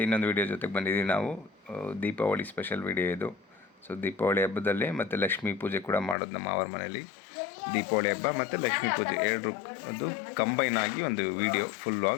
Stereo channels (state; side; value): drops out; right; at 6.2 s